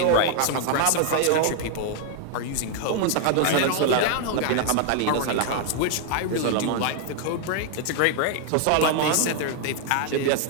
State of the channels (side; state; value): both; different; correlation 0.00